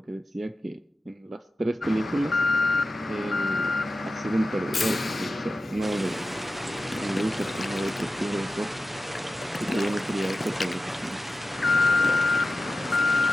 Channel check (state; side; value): normal; both; correlation 0.93